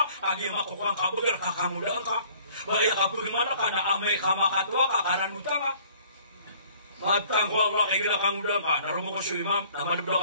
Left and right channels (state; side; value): inverted; both; correlation -0.55